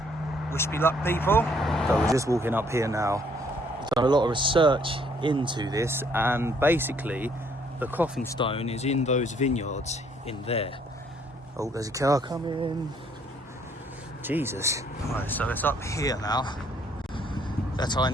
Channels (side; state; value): both; normal; correlation 0.65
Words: Wish me luck, people. So we're just walking up here now. I've done a lot of research into this, and basically the Coffin Stone is in those vineyards in there. Oh, there's a car coming. Jesus. Right, so it's up here now. That's how I